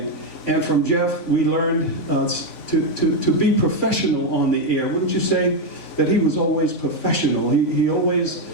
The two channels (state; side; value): late; right; 3.5 ms